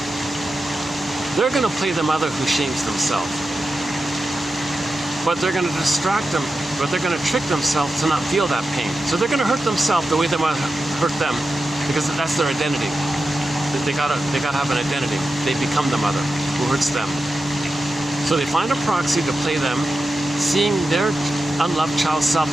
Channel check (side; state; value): both; normal; correlation 0.91